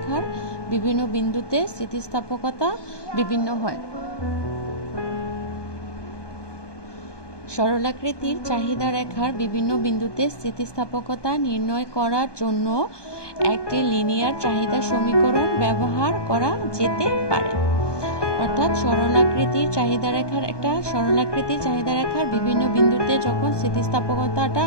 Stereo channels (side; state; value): right; late; 1.2 ms